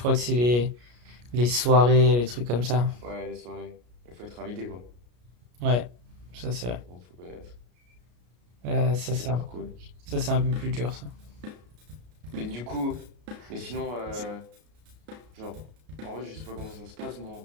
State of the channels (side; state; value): left; late; 33 ms